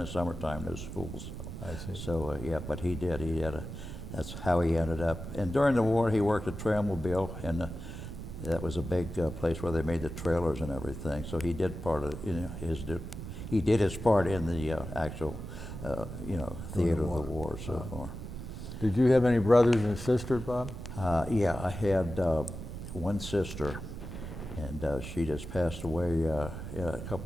summertime, no schools. I see. So yeah, but he did. That's how he ended up. And during the war, he worked at Trailmobile, and that was a big place where they made the trailers and everything. So he did he did his part in the actual, theater of the war so far. Did you have any brothers and sisters, Bob? Yeah, I had one sister, and she just passed away a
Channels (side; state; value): right; noise; rumble, 9 dB below the sound